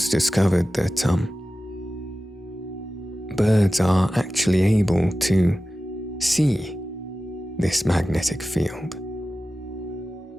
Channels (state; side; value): normal; both; correlation 0.94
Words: discovered that birds are actually able to see this magnetic field.